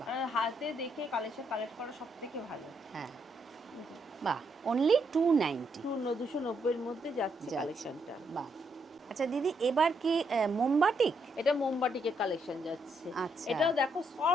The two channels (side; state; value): both; normal; correlation 0.76